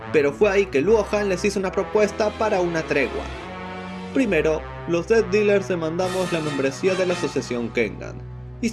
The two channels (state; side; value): identical; both; correlation 1.00